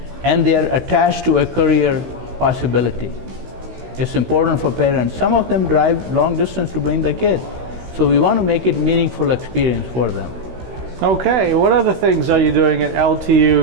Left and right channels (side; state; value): left; late; 16 ms